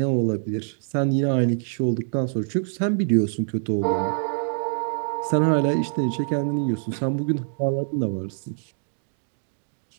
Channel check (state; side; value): silent; left; digital silence